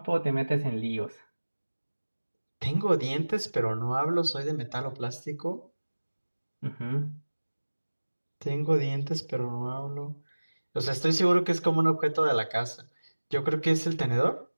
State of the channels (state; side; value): inverted; both; correlation -1.00